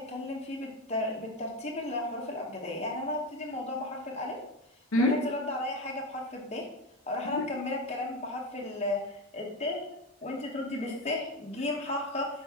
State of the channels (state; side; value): normal; both; correlation 0.18